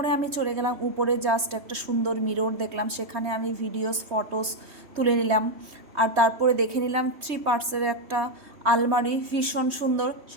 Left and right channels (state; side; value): late; left; 3.2 ms